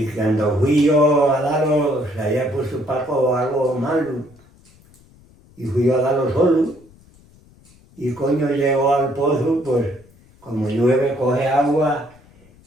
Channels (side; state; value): left; noise; rumble, 28 dB below the sound